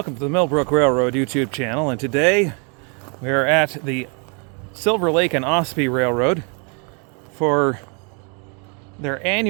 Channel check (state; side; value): quieter; left; 36.4 dB